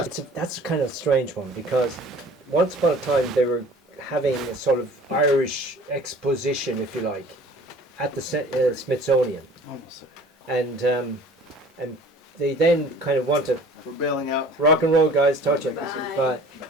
That's a kind of strange one because once upon a time they were having a sort of Irish exposition, if you like, at the Smithsonian. And they then kind of wanted, we're bailing out. Rock and roll guys, touch it.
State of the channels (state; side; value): normal; both; correlation 0.47